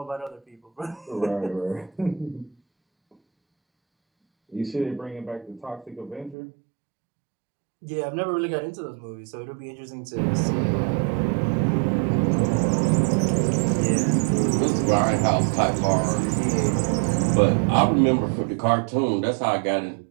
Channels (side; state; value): left; drops out; at 6.4 s